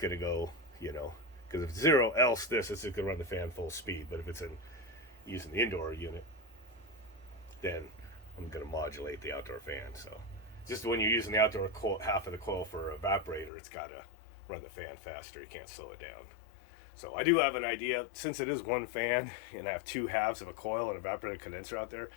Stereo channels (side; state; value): right; drops out; at 13.5 s